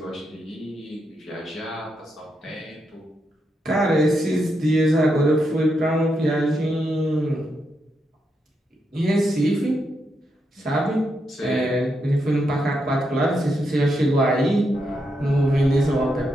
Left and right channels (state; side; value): normal; both; correlation 0.82